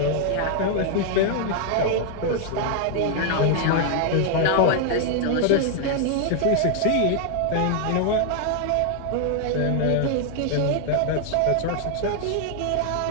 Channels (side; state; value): both; different; correlation 0.00